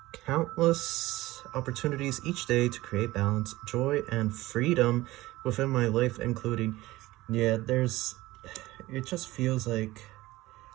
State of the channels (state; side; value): quieter; left; 18.3 dB